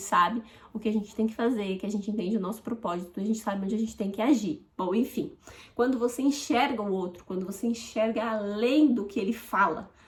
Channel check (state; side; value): identical; both; correlation 1.00